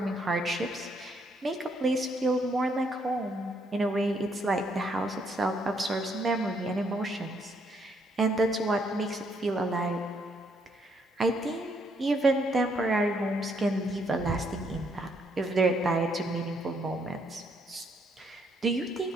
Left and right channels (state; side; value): normal; both; correlation 0.72